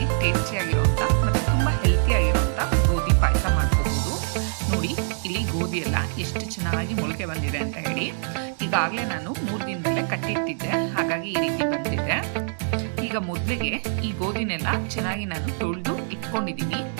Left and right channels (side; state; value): left; silent; 62 dB below the other